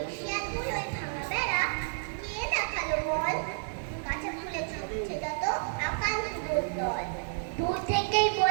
এশিয়াগুলো ভাঙা বেড়া কে দেখালো বল? গাছে ফুলে ছুটছে যত আকান্ত দল, দূর থেকেই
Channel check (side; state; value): left; silent; digital silence